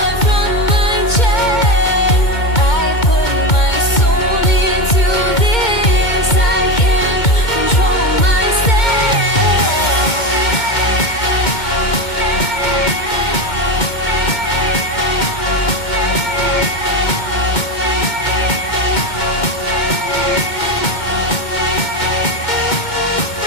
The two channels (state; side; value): late; right; 2.2 ms